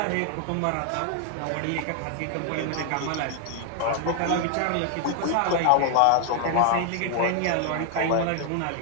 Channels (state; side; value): different; both; correlation 0.00